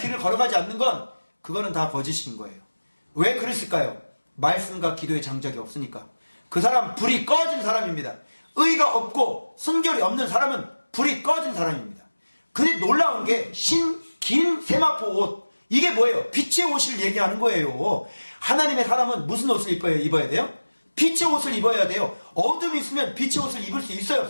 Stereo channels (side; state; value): both; inverted; correlation -1.00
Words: 걸어가지 않는 건 그거는 다 거짓인 거예요. 왜 그랬을까요? 말씀과 기도의 장작이 없으니까. 그 사람 불이 꺼진 사람입니다. 의가 없고 순결이 없는 사람은 불이 꺼진 사람입니다. 근데 놀라운 게 긴 세마포 옷. 이게 뭐예요? 빛의 옷을 얘기하는 거예요. 하나님의 사람은 무슨 옷을 입어야 돼요? 빛의 옷을 입어야 돼요. 어둠이 있으면 빛의 옷을 입을 수 있어요,